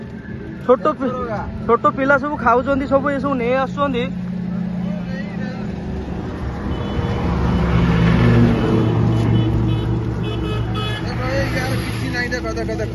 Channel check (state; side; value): identical; both; correlation 1.00